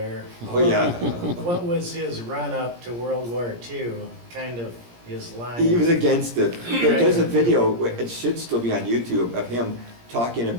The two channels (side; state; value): left; late; 17 ms